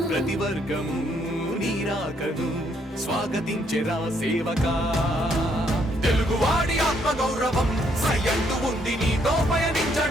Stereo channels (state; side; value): normal; both; correlation 0.71